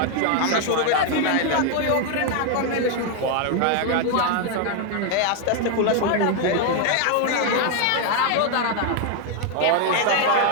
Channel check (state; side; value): different; both; correlation 0.01